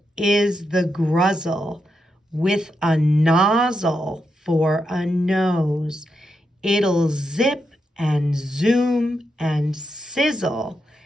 is the Gruzzle with a nozzle for a nose. It'll zip and zoom and sizzle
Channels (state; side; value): normal; both; correlation 0.84